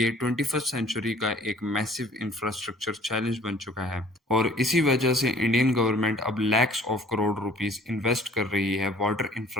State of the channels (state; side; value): normal; both; correlation 0.54